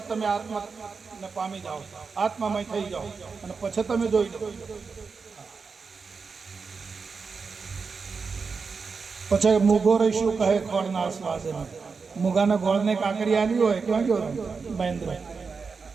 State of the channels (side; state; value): left; quieter; 5.0 dB